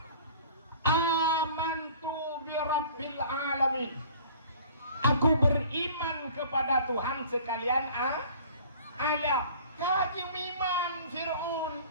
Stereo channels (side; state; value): both; inverted; correlation -0.48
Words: Amantu bi Rabbil Alamin. Aku beriman kepada Tuhan sekalian alam. Kaki iman Fir'aun.